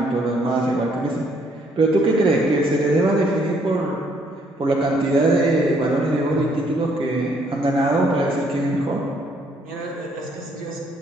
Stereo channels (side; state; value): both; normal; correlation 0.67